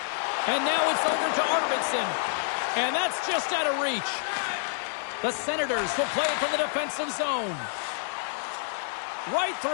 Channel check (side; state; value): right; silent; digital silence